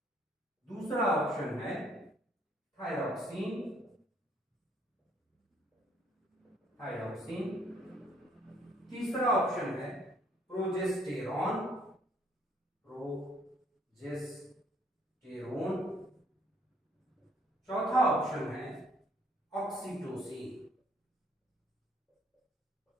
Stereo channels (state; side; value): normal; both; correlation 0.64